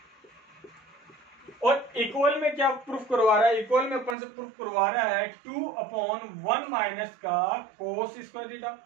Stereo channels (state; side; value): drops out; left; at 4.2 s